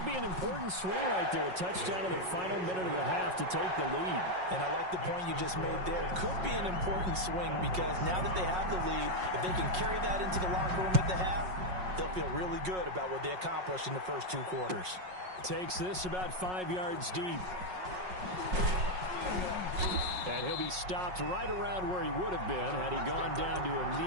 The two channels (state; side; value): late; left; 5.5 ms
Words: be an important swing right there. A touchdown in the final minute of the half to take the lead. And I like the point you just made there. Could be an important swing because now that they have the lead, if they can carry that into the locker room at the half, they'll feel really good about what they accomplished in the first 2 quarters. Takes this about 5 yards deep. And he'll be stopped right around where he would have been had he gone down to a